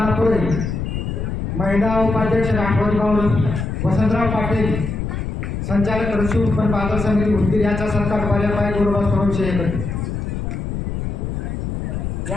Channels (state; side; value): noise; left; rumble, 4 dB below the sound